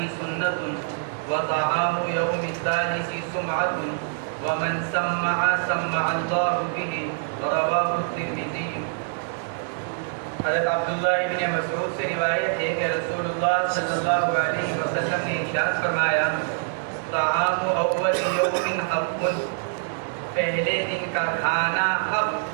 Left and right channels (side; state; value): left; silent; digital silence